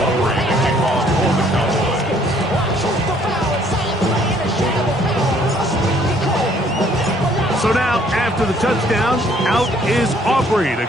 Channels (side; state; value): both; normal; correlation 0.62